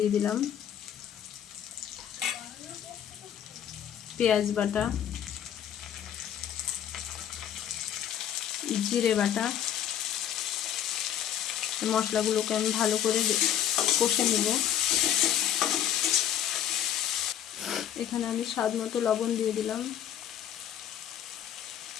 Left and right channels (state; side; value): quieter; right; 10.1 dB